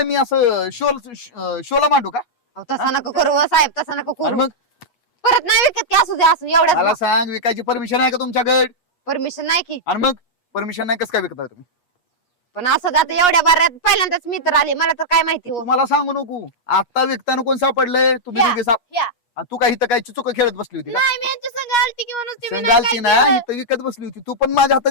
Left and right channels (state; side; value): late; right; 8.3 ms